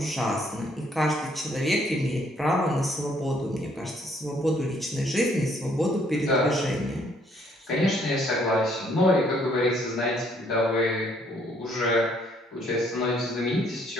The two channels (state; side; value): normal; both; correlation 0.66